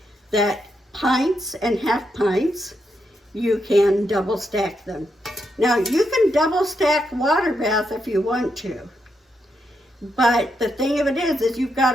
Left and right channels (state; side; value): normal; both; correlation 0.82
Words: that pints and half pints, you can double stack them. Now you can double stack water bath if you want to, but the thing of it is you've got